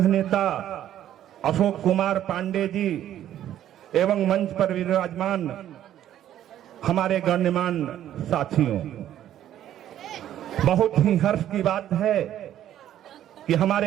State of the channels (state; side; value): quieter; left; 11.6 dB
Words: नेता अशोक कुमार पांडे जी एवं मंच पर विराजमान हमारे गण्यमान साथियों, बहुत ही हर्ष की बात है कि